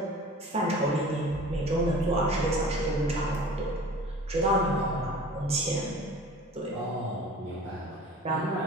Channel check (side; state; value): both; normal; correlation 0.42